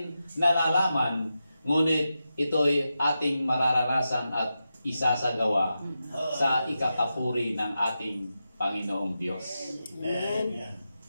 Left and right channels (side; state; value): both; inverted; correlation -0.89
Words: nalalaman, ngunit ito'y ating mararanasan at isasagawa sa ikakapuri ng ating Panginoong Diyos. Amen.